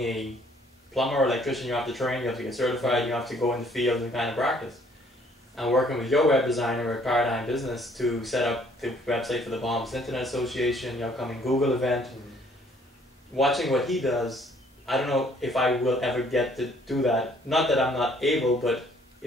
a plumber or electrician, you have to train, you have to get certified, you have to go in the field and kind of practice. And working with your web designer at Paradigm Business to set up the website for the Bahamas Internet Association, the upcoming Google event, watching what he does, I don't know if I will ever get to do that. Not that I'm not able, but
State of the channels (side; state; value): both; normal; correlation 0.61